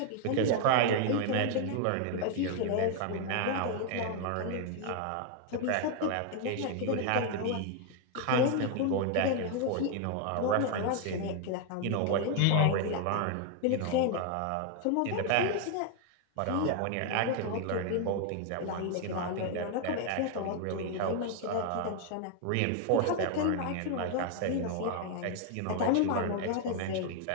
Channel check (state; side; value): different; both; correlation 0.00